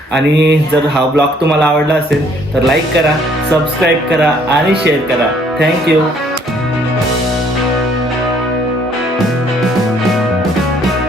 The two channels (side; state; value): both; normal; correlation 0.63